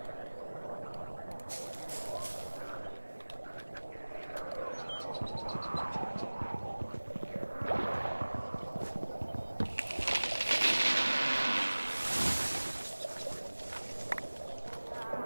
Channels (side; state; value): both; inverted; correlation -1.00